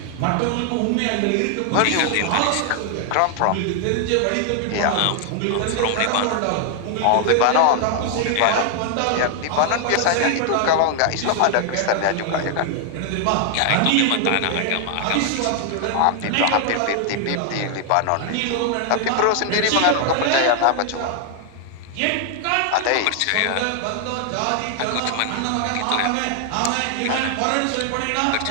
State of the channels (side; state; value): both; different; correlation 0.00